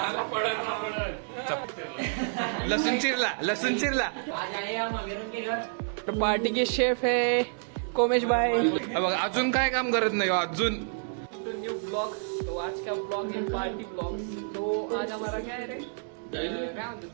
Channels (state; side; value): silent; left; digital silence